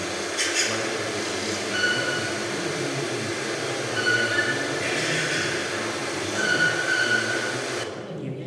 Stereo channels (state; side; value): identical; both; correlation 1.00